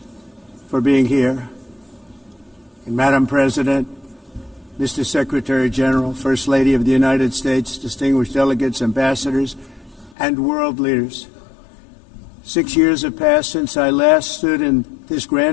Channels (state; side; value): drops out; right; at 10.2 s